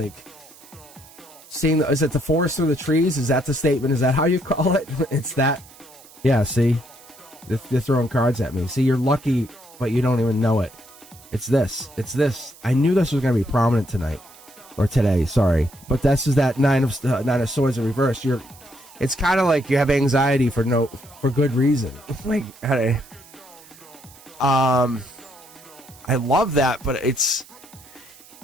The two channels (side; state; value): right; noise; hiss, 23 dB below the sound